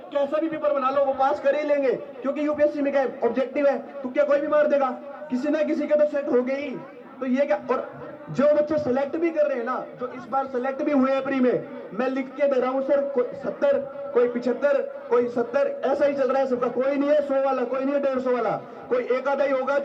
कैसा भी पेपर बना लो वो पास कर ही लेंगे, क्योंकि यूपीएससी में क्या ऑब्जेक्टिव है, तो क्या कोई भी मार देगा, किसी ना किसी का तो सेट हो गई। तो ये क्या, और जो बच्चे सेलेक्ट भी कर रहे हैं ना, जो इस बार सेलेक्ट भी हुए हैं प्री में, मैं लिख के दे रहा हूं सर, कोई 70, कोई 75, कोई 70, ऐसा ही चल रहा है सबका। कोई नहीं है 100 वाला, कोई नहीं है 150 वाला, कोई एक आधा ही होगा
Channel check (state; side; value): identical; both; correlation 1.00